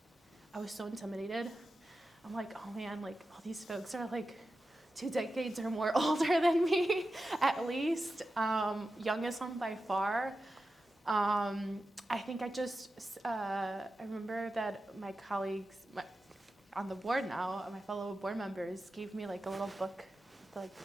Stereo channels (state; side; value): normal; both; correlation 0.92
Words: I was so intimidated. I'm like, oh man, like all these folks are like 2 decades or more older than me, at least. Youngest one by far. I think I remember that my colleagues on the board now, my fellow board members, gave me like a little book, like